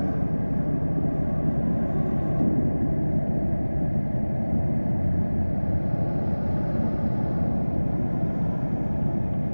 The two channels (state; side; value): inverted; both; correlation -1.00